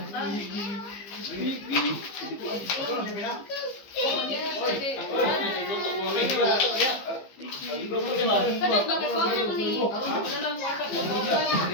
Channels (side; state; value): right; late; 15 ms